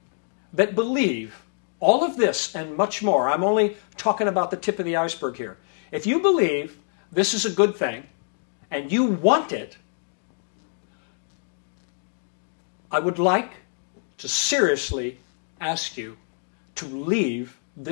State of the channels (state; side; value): silent; right; 57 dB below the other